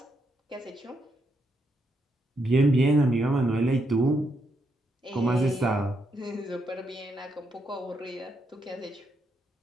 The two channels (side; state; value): both; normal; correlation 0.79